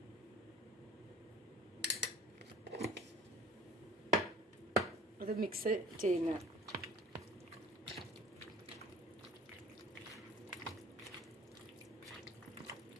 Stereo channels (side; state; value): both; normal; correlation 0.49